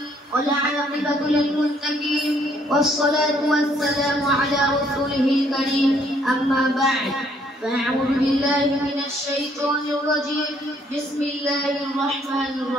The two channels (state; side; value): normal; both; correlation 0.66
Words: والعاقبة للمتقين والصلاة والسلام على رسوله الكريم. أما بعد فأعوذ بالله من الشيطان الرجيم. بسم الله الرحمن